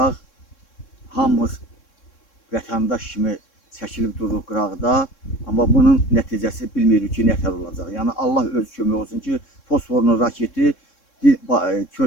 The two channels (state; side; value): late; right; 3.6 ms